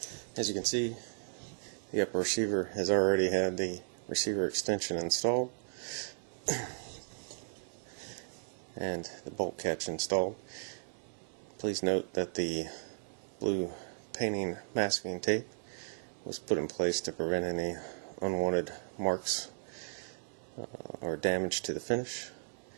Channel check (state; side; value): silent; left; 54 dB below the other